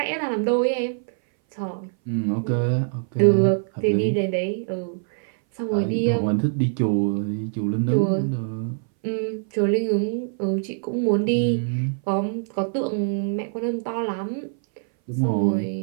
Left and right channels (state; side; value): silent; left; 60 dB below the other